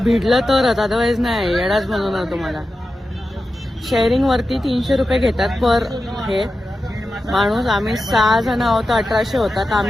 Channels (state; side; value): normal; both; correlation 0.92